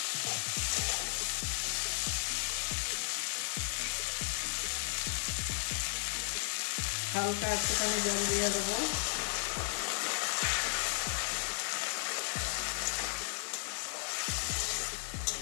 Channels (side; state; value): right; silent; 55 dB below the other